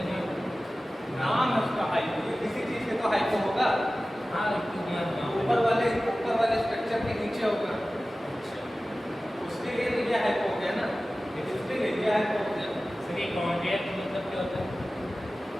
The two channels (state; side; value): normal; both; correlation 0.96